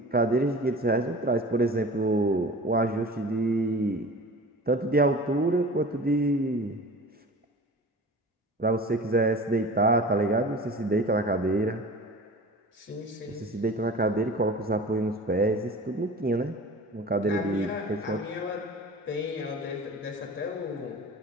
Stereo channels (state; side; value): normal; both; correlation 0.38